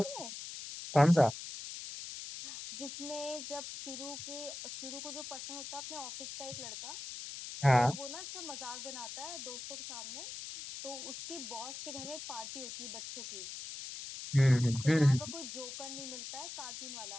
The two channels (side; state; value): left; noise; hiss, 9 dB below the sound